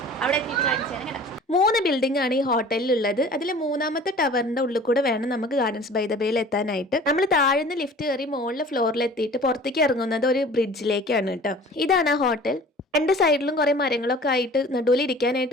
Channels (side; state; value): both; normal; correlation 0.45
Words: അവിടെ എത്തിയിട്ട് കാണിച്ചാണ് കേട്ടോ. 3 ബിൽഡിംഗ് ആണ് ഈ ഹോട്ടലിലുള്ളത്. അതിൽ 3ാമത്തെ ടവറിന്റെ ഉള്ളിൽ കൂടെ വേണം നമുക്ക് ഗാർഡൻസ് ബൈ ദ ബേയിൽ എത്താനായിട്ട്. നമ്മൾ താഴ്ന്ന് ലിഫ്റ്റ് കയറി മുകളിലെ ഫ്ലോറിൽ എത്തിയിട്ട് പുറത്തേക്ക് ഇറങ്ങുന്നത് ഒരു ബ്രിഡ്ജിലേക്കാണ് കേട്ടോ. ഇതാണ് ആ ഹോട്ടൽ. 2 സൈഡിലും കുറെ മരങ്ങളൊക്കെ ആയിട്ട് നടുവിൽ